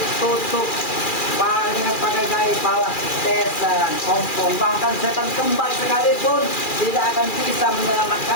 tutup dengan pakai gaya bawah tesan, ompong, bahkan setan kembar sekalipun tidak akan bisa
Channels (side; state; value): right; late; 2.4 ms